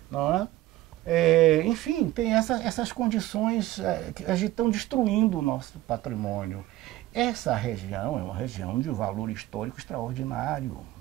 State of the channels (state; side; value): quieter; left; 16.0 dB